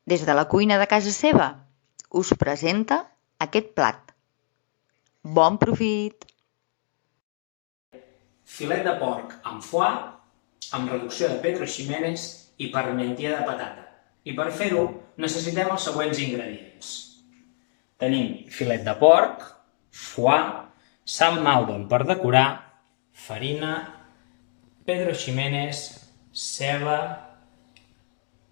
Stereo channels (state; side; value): silent; right; 61 dB below the other